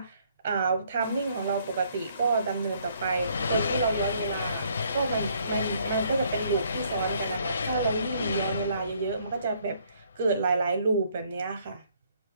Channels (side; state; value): both; inverted; correlation -0.66